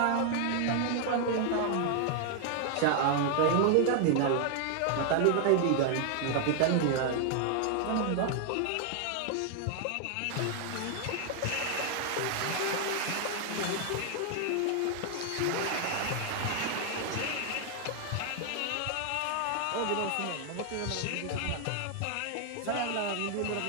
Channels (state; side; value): different; both; correlation 0.00